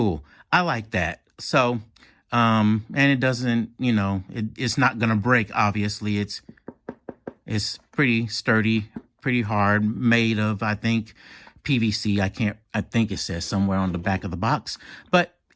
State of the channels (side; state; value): both; identical; correlation 1.00